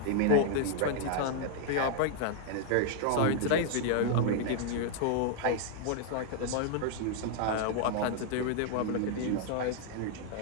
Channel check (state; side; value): different; both; correlation -0.01